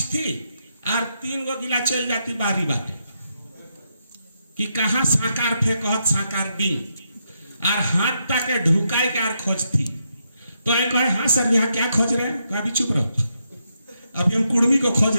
और 3 गो गिला चल जाती बारी बाटे कि कहाँ साकार फेंकत साकार दिन और हाथ ताके ढुकाए के और खोजती। तो ये कहे हाँ सर यहाँ क्या खोज रहे हैं? अभी चुप रहो, अभी हम कुर्मी को खोज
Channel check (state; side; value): inverted; both; correlation -0.81